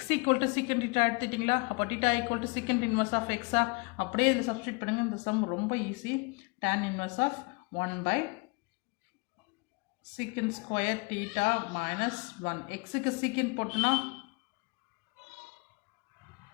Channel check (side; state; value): right; quieter; 29.8 dB